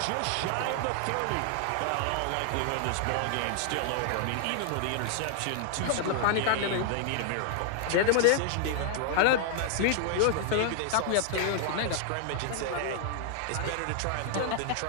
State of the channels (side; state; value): both; different; correlation 0.00